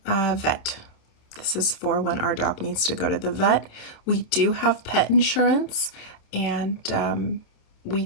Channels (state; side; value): late; right; 27 ms